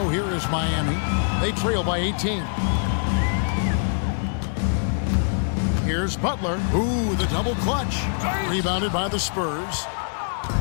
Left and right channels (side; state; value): right; silent; digital silence